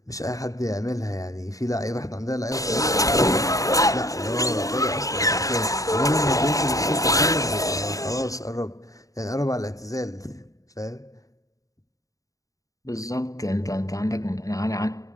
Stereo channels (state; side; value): late; right; 0.16 ms